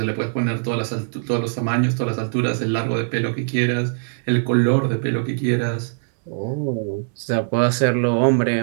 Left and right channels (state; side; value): silent; left; digital silence